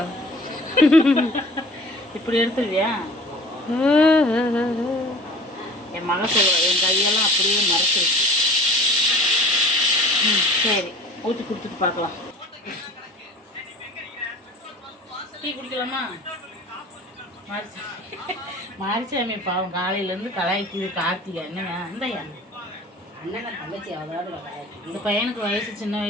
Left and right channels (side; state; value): both; normal; correlation 0.43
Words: இப்படி எடுத்துருவியா? என் மக சொல்லுவா, என் கையெல்லாம் அப்படியே மறைச்சிருச்சு. சரி, ஊற்றி கொடுத்துட்டு பார்க்கலாம். டீ குடிக்கலாமா? மாரிச்சாமி பாவம் காலையிலேருந்து கலாய்க்குது. கார்த்திகா என்னங்க இந்தையா அண்ணன் தங்கச்சி அவ்வளோ. இந்த பையனுக்கு வயசு சின்ன